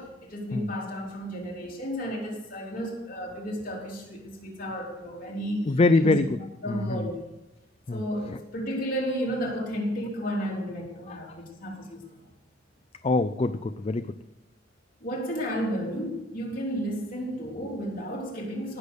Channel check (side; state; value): both; normal; correlation 0.58